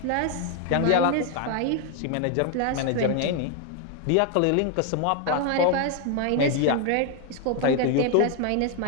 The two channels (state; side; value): different; both; correlation 0.00